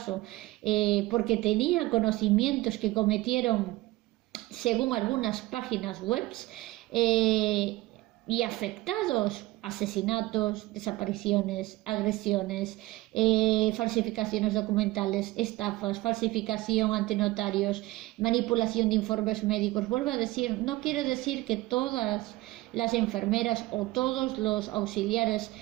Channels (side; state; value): left; quieter; 19.3 dB